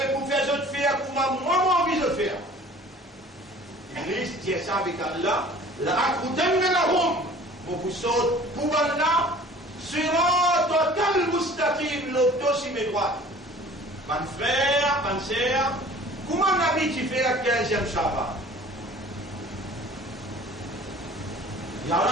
pour faire autre faire pour moi envie de faire. Iblis dit ça avec Allah, la akudannahum, mon vous saute pour ban-là, sur total mustaqim, l'auto sur mes droites. Mon frère, mon sœur, comment on a dit tu fais la 15e Shabbat?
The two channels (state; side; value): normal; both; correlation 0.48